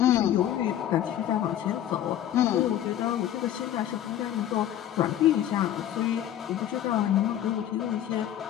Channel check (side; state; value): right; quieter; 11.4 dB